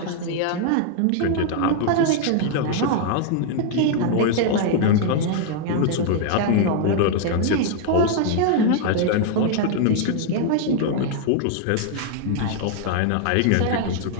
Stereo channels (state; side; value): different; both; correlation 0.00